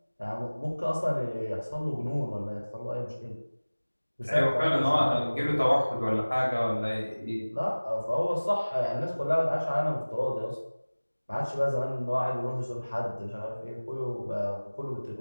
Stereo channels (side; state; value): both; inverted; correlation -1.00